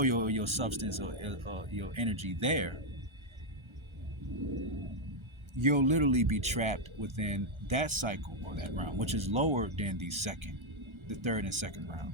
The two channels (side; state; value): left; late; 1.3 ms